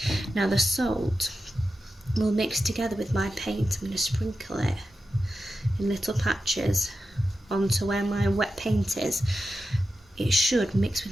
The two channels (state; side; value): normal; both; correlation 0.90